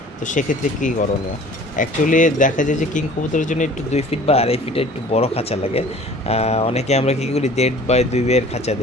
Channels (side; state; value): both; normal; correlation 0.48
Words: তো সেক্ষেত্রে কী করণীয়। অ্যাকচুয়ালি দেখা যায় যে কিং কবুতরের জন্য একটু 2 ফিট বা 2.5 ফিটের একটু বড় খাঁচা লাগে। অনেকে আমরা কী করি 1.5 বাই 2 এর খাঁচা